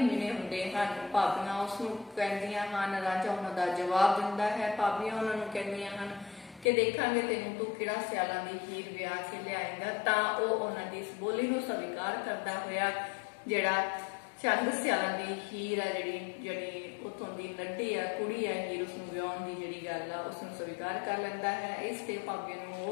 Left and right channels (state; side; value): drops out; right; at 6.7 s